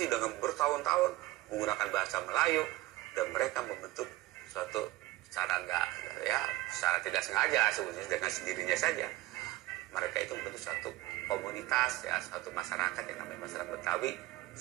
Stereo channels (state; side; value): quieter; left; 17.7 dB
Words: dengan bertahun-tahun menggunakan bahasa Melayu, dan mereka membentuk suatu secara tidak sengaja sebetulnya dengan sendirinya saja. Mereka itu membentuk suatu komunitas ya, suatu masyarakat yang namanya masyarakat Betawi